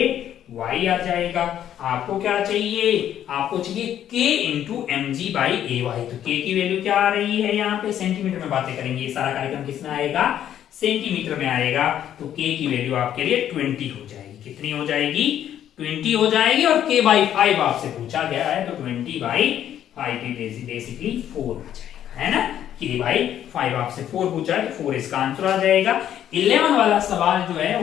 आ जाएगा। आपको क्या चाहिए, आपको चाहिए k into M G by A Y. तो k की वैल्यू क्या आ रही है, यहाँ पे सेंटीमीटर में बातें करेंगे, ये सारा कार्यक्रम किसमें आएगा, सेंटीमीटर में आएगा। तो k की वैल्यू आपके लिए 20 हो जाएगी। कितनी हो जाएगी, 20 हो जाएगी। और k बाई 5 आपसे पूछा गया है, तो 20 बाई 5 बेसिकली 4 आ जाएगा, है ना। k बाई 5 आपसे 4 पूछा है, तो 4 इसका आंसर आ जाएगा। 11 वाला सवाल जो है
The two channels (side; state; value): right; quieter; 10.6 dB